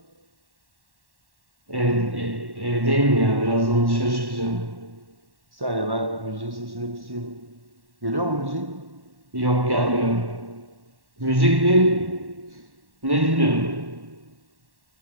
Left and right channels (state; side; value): late; left; 1.1 ms